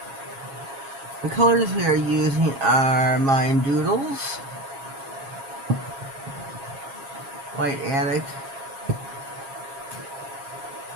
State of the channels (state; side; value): late; left; 7.4 ms